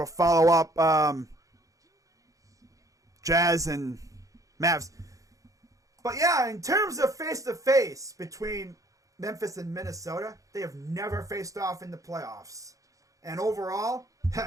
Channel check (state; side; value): late; left; 0.16 ms